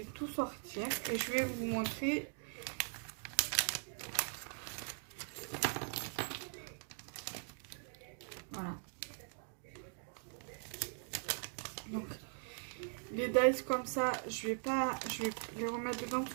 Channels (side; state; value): left; silent; 50 dB below the other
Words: tout sortir et je vais vous montrer. Voilà. Donc les dice comme ça, je vais les remettre dedans parce